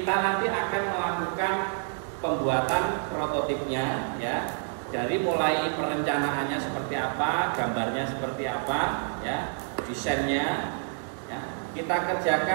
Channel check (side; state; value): left; silent; 59 dB below the other